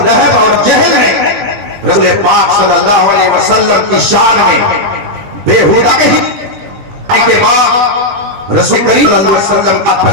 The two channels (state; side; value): late; left; 20 ms